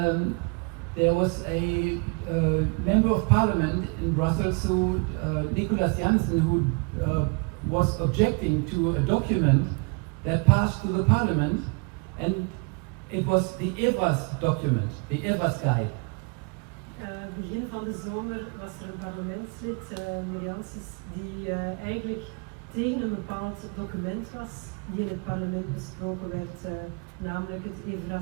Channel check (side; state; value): left; quieter; 33.2 dB